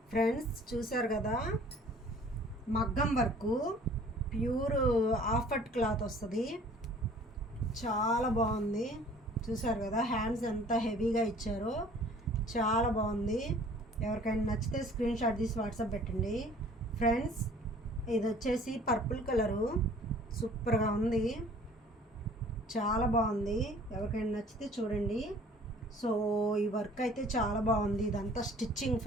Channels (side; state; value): both; normal; correlation 0.51